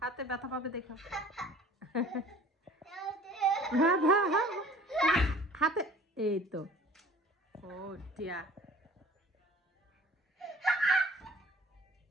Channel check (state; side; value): normal; both; correlation 0.48